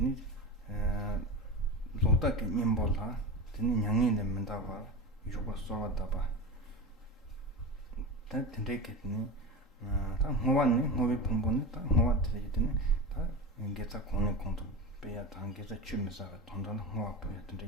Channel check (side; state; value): both; normal; correlation 0.26